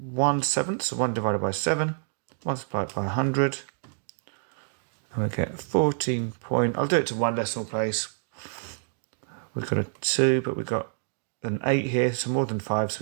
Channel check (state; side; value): silent; left; digital silence